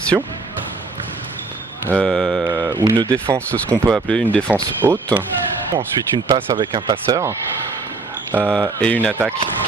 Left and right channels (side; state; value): left; quieter; 3.8 dB